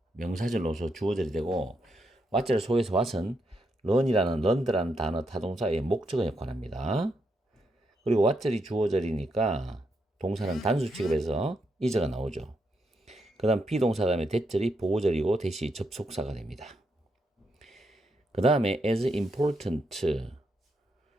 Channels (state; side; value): normal; both; correlation 0.81